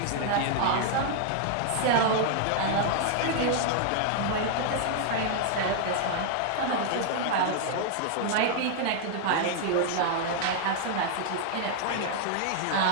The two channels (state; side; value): different; both; correlation 0.00